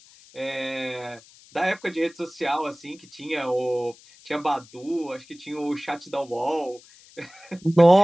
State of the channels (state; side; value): noise; left; hiss, 24 dB below the sound